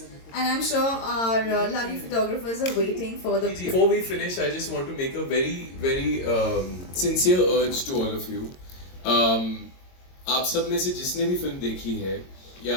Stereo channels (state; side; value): late; right; 22 ms